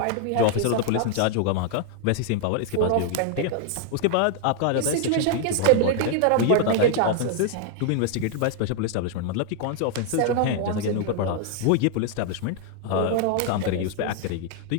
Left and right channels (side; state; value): both; different; correlation 0.00